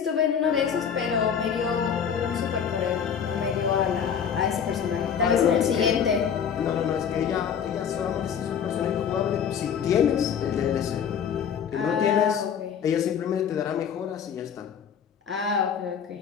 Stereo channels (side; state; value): right; quieter; 7.7 dB